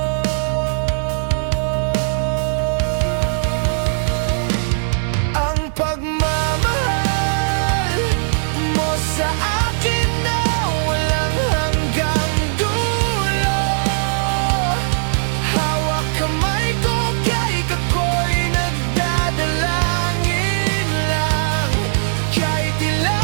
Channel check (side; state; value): left; silent; digital silence